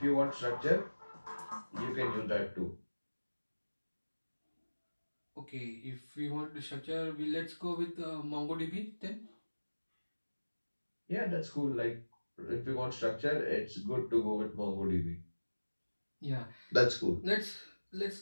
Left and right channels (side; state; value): both; inverted; correlation -1.00